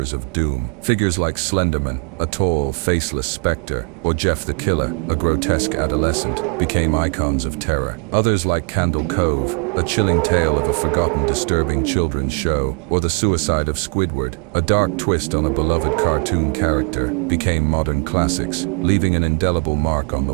of doom. Figures like Slenderman, a tall, faceless specter, or Jeff the Killer, a grotesque adolescent, became icons of terror. Others like Candle Cove, a chilling tale of a forgotten, disturbing children's show, or The Suicide of Squidward, a dark twist on a beloved cartoon character, became modern classics, leaving an indelible mark on the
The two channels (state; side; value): quieter; left; 38.3 dB